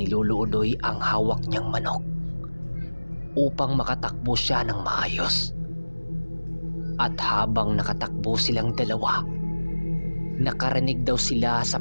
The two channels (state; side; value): inverted; both; correlation -1.00